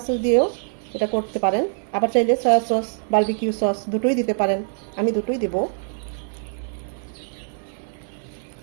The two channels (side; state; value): left; silent; digital silence